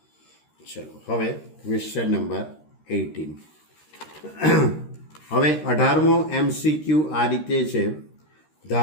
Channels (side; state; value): right; late; 13 ms